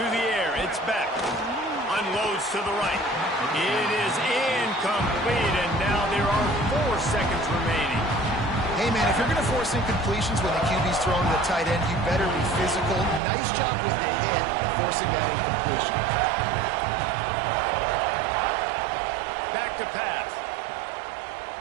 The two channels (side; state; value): left; drops out; at 13.2 s